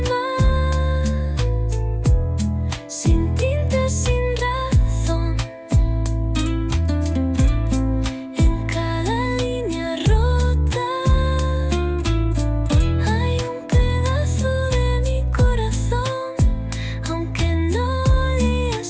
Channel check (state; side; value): identical; both; correlation 1.00